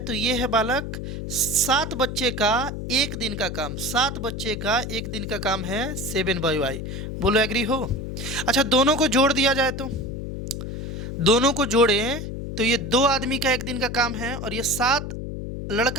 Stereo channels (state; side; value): noise; left; hum, 6 dB below the sound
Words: ये है बालक 7 बच्चे का एक दिन का काम, 7 बच्चे का एक दिन का काम है 7/y। बोलो एग्री हो। अच्छा दोनों को जोड़ दिया जाए तो, दोनों को जोड़ें तो ये 2 आदमी का एक दिन का काम है और ये 7